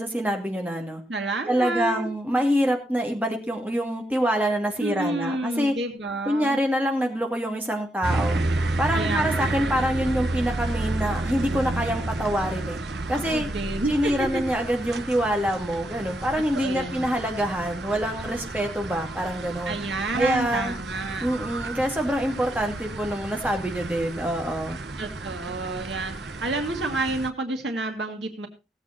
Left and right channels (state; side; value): normal; both; correlation 0.79